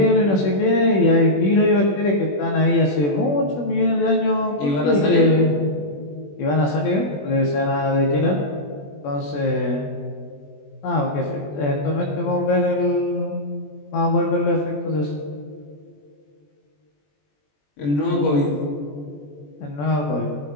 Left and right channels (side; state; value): right; late; 21 ms